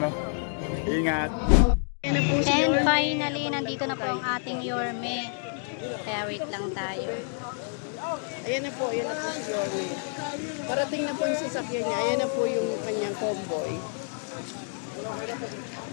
Ingat. And finally, nandito na po ang ating Yorme. Kaya wait lang tayo. Ayan na po si Yorme. Parating na po yung sasakyan niya. Ayan na po yung kanyang convoy.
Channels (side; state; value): right; silent; 59 dB below the other